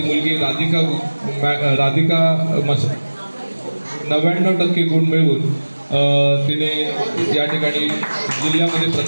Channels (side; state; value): both; inverted; correlation -1.00